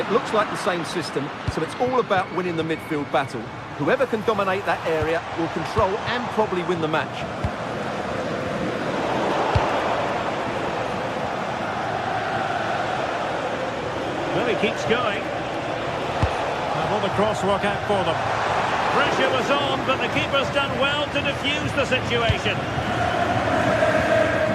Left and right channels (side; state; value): both; identical; correlation 1.00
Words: looks like the same system, so it's all about winning the midfield battle. Whoever can dominate that area will control and probably win the match. Well, he keeps going. And will the cross work out for them? Pressure was on, but the keeper's done well to defuse the situation.